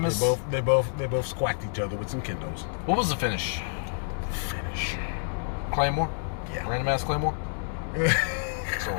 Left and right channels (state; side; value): silent; right; digital silence